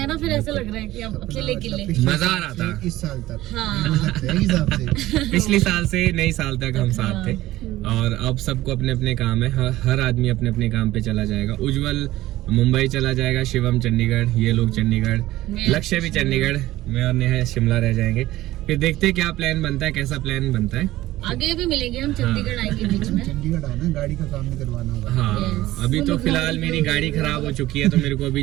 ना, फिर ऐसा लग रहा है कि अब अकेले मजा आ रहा था इस साल तक। हाँ। पिछले साल से नई साल तक हम साथ थे और अब सबको अपने अपने काम है। हर आदमी अपने अपने काम पे चला जाएगा। उज्जवल मुंबई चला जाएगा, शिवम चंडीगढ़, ये लोग चंडीगढ़, लक्ष्य भी चंडीगढ़, मैं और नेहा शिमला रह जाएंगे। फिर देखते हैं क्या प्लान बनता है, कैसा प्लान बनता है। आगे भी मिलेंगे हम, चंडीगढ़ आएंगे बीच में। चंडीगढ़ आना, गाड़ी का काम भी करवाना होगा। हाँ अभी तो फिलहाल मेरी गाड़ी खराब हो चुकी है तो मेरे को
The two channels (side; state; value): left; quieter; 16.2 dB